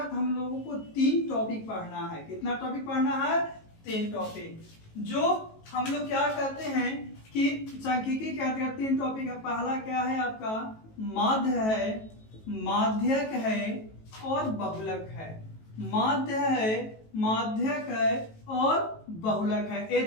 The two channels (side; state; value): right; late; 18 ms